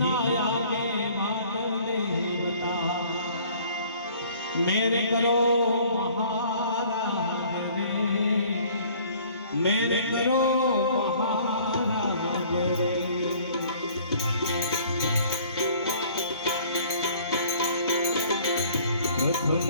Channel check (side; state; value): both; inverted; correlation -0.54